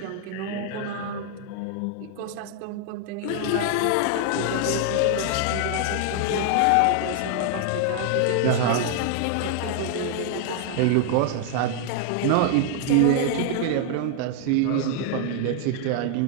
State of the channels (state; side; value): different; both; correlation 0.00